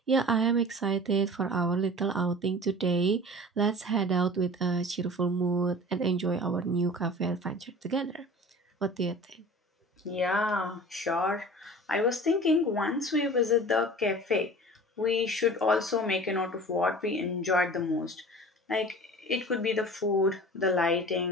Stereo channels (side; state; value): both; normal; correlation 0.40